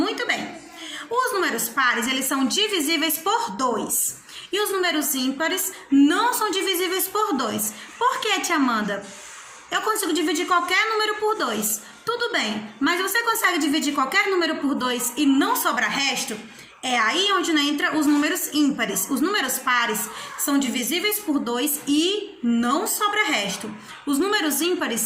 bem. Os números pares, eles são divisíveis por 2. E os números ímpares não são divisíveis por 2. Por que, tia Amanda? Eu consigo dividir qualquer número por 2. Tudo bem, mas você consegue dividir qualquer número por 2 e não sobra resto? É aí onde entra os números ímpares. Os números pares são divisíveis por 2 e não sobra resto. Os números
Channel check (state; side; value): identical; both; correlation 1.00